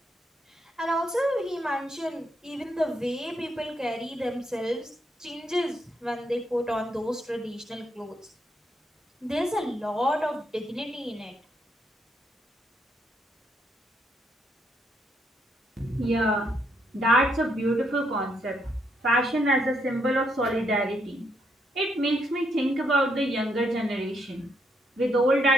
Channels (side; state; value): both; normal; correlation 0.76